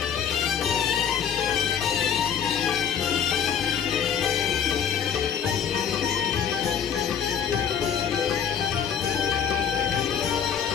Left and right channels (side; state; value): right; quieter; 8.0 dB